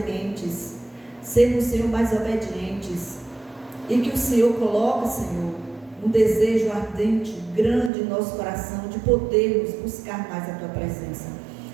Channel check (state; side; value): drops out; left; at 7.9 s